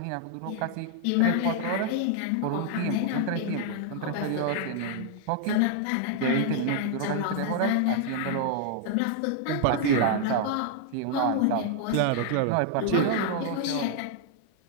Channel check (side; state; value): both; different; correlation 0.00